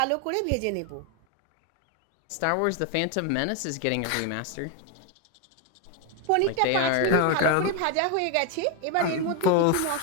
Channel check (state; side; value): different; both; correlation 0.01